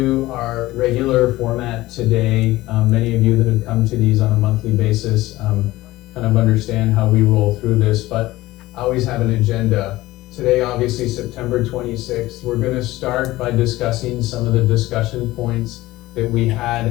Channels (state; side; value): quieter; right; 17.7 dB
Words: our regular format today. Many of you that have come to these on a monthly basis kind of understand how we roll through this, but I always have an agenda. Today, obviously, September 26th, we're going to start by discussing some of the discussion points that we